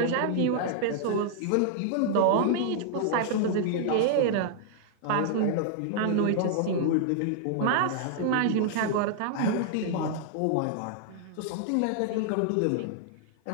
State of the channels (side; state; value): both; different; correlation -0.01